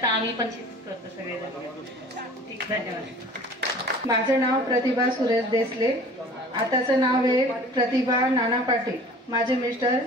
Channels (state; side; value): normal; both; correlation 0.46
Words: आम्ही पण शेतीच करतो सगळेजण. धन्यवाद. माझं नाव प्रतिभा सुरेश देसले, आताचं नाव आहे प्रतिभा नाना पाटील. माझे मिस्टर